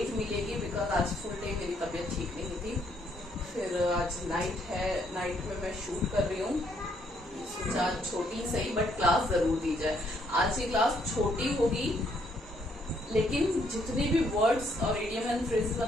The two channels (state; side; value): normal; both; correlation 0.70